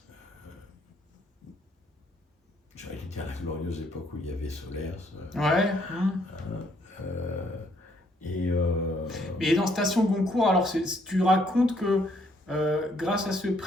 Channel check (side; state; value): both; normal; correlation 0.68